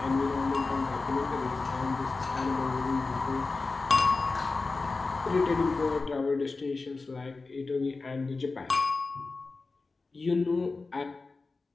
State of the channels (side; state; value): right; quieter; 3.8 dB